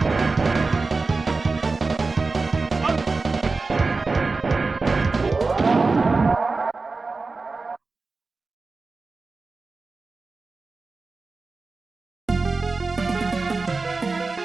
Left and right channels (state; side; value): quieter; left; 3.9 dB